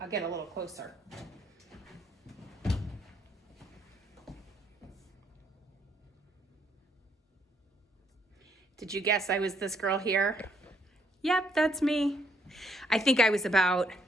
get a little closer. Did you guess I was this girl here? Yep, that's me. I think I was about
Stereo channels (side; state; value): both; normal; correlation 0.70